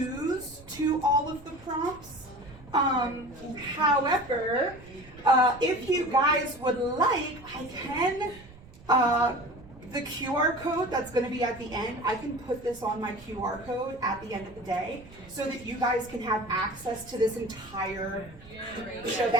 to all of the prompts. However, if you guys would like, I can, the QR code that's going to be at the end, I can put this on my QR code at the end of the day so that you guys can have access to this entire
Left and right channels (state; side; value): noise; right; rumble, 21 dB below the sound